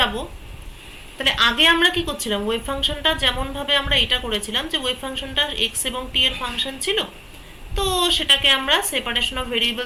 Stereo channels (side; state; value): both; identical; correlation 1.00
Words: তাহলে আগে আমরা কি করছিলাম, ওয়েভ ফাংশনটা যেমনভাবে আমরা এটা করেছিলাম যে ওয়েভ ফাংশনটা এক্স এবং টি এর ফাংশন ছিল, তো সেটাকে আমরা সেপারেশন অফ